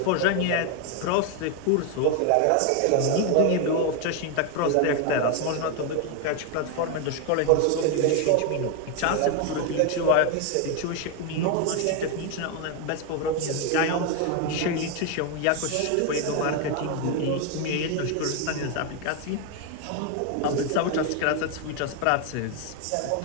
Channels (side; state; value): both; different; correlation 0.01